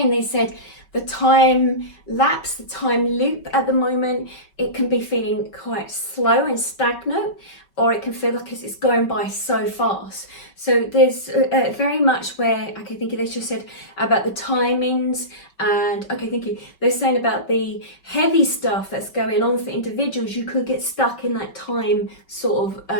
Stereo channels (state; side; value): late; right; 5.3 ms